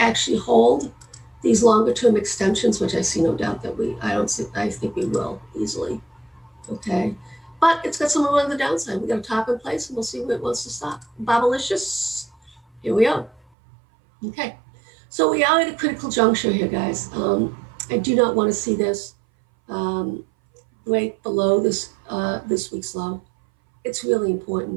hold these longer term extensions, which I see no doubt that I think we will easily. Okay. But it's got some on the downside. We got a top in place and we'll see where it wants to stop. Bobalicious. Here we are. Okay. So we are at a critical juncture here, guys. I do not want to see this break below this week's low. It's really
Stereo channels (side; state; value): left; drops out; at 13.4 s